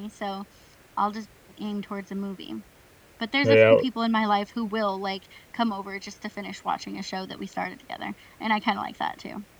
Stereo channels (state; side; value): identical; both; correlation 1.00